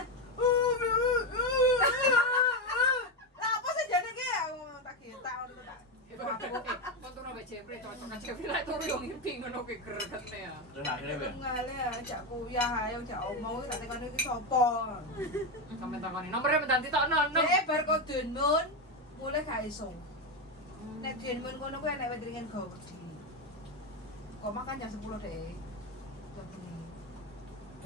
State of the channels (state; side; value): normal; both; correlation 0.11